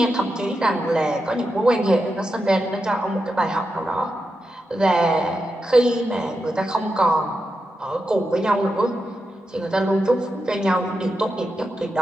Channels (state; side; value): normal; both; correlation 0.88